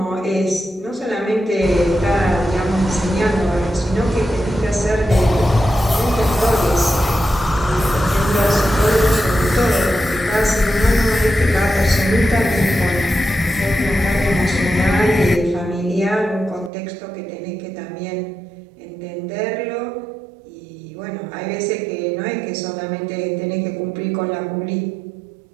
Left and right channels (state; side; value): drops out; left; at 16.7 s